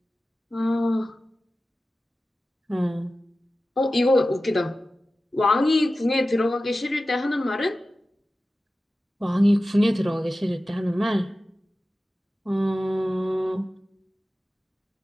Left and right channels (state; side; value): normal; both; correlation 0.95